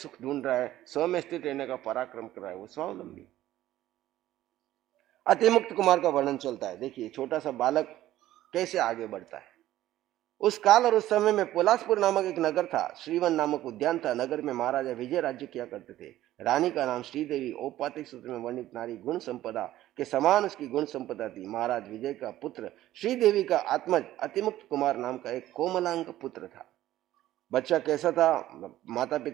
ढूंढ रहा है, स्व में स्थित रहने का पराक्रम कर रहा है, वो स्वावलंबी। अतिमुक्त कुमार का वर्णन चलता है। देखिए, छोटा सा बालक कैसे आगे बढ़ता है। उस काल और उस समय में पोलासपुर नामक एक नगर था। श्रीवन नामक उद्यान था। नगर में महाराजा विजय राज्य किया करते थे। रानी का नाम श्रीदेवी। औपातिक सूत्र में वर्णित नारी गुण संपदा के समान उसकी गुण संपदा थी। महाराज विजय का पुत्र श्रीदेवी का आत्मज अतिमुक्त कुमार नाम का एक कोमलांग पुत्र था। बच्चा कैसा था, माता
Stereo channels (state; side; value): quieter; left; 14.2 dB